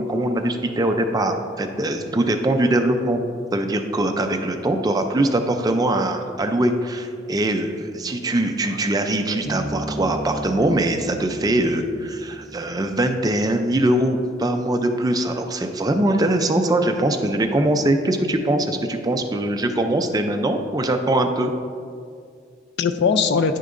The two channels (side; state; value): both; normal; correlation 0.60